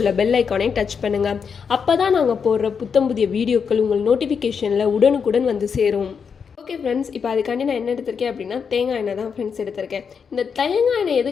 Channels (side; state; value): right; quieter; 6.3 dB